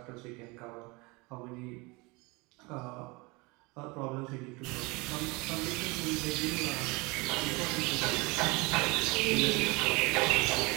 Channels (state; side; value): quieter; left; 25.9 dB